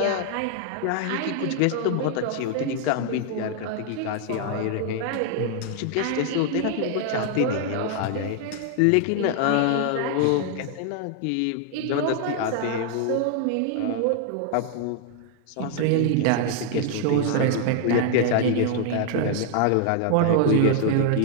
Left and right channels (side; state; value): both; different; correlation 0.00